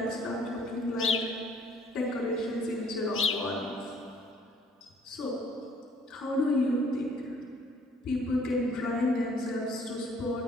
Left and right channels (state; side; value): normal; both; correlation 0.58